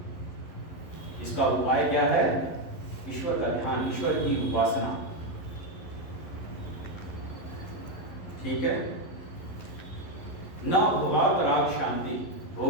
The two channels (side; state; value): right; late; 11 ms